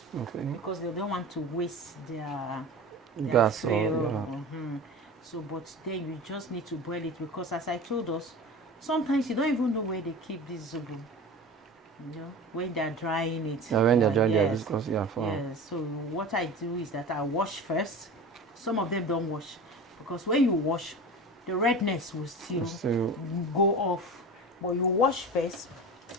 Okay. Because they don't want to waste their gas fuel. or So, but then you just need to boil it, because as I told us, sometimes you don't even know where they keep this zobo. You know, when they're drying it. Yeah, when they're drying their yes. viscous, yeah. So what I do is that I wash first. Some of them don't wash, because when you wash, the redness will still go off. But you wash first.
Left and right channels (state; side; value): normal; both; correlation 0.33